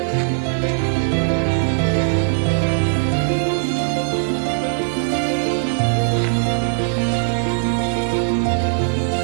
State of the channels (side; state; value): left; silent; digital silence